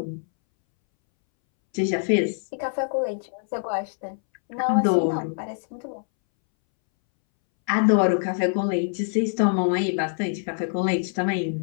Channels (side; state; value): right; silent; 62 dB below the other